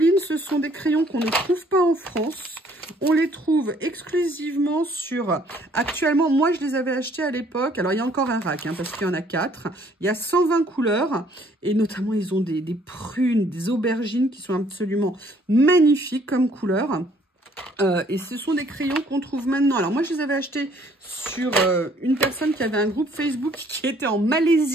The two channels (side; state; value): both; normal; correlation 0.62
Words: ce sont des crayons qu'on ne trouve pas en France. On les trouve exclusivement sur... Actuellement, moi, je les avais achetés à l'époque. Alors, il y a encore un rack, hein, parce qu'il y en a 4. Il y a 120 couleurs. Et notamment, ils ont des prunes, des aubergines qui sont absolument magnifiques comme couleurs. Et ce sont des crayons qu'on trouve maintenant. Alors moi je les avais achetés sur une personne qui avait un groupe Facebook qui était en